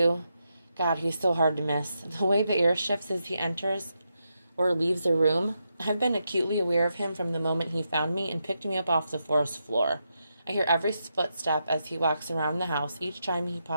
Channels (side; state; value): both; inverted; correlation -0.84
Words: God, he's so hard to miss. The way the air shifts as he enters or leaves a room. I've been acutely aware of him from the moment he found me and picked me up off the forest floor. I hear every footstep as he walks around the house, each time he